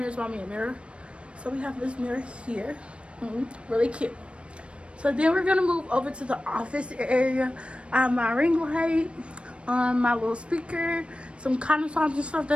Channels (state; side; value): late; left; 0.059 ms